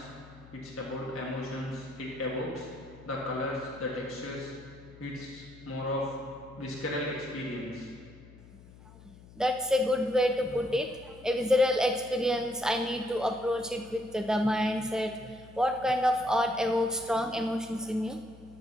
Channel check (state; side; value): noise; left; hum, 20 dB below the sound